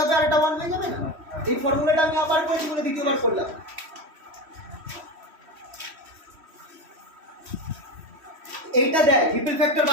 হবে আর এটা 1 হয়ে যাবে না? এই ফর্মুলাটা আমি আবার করেছি বলে দ্বিতীয়বার করলাম। এইটা দেয় রিপেল ফ্যাক্টর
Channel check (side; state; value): left; late; 3.1 ms